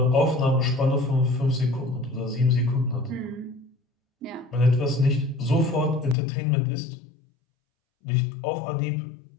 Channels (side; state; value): right; drops out; at 6.2 s